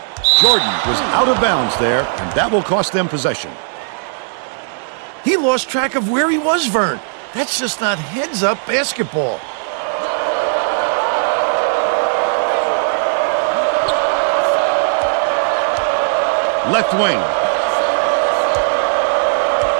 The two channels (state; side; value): silent; left; digital silence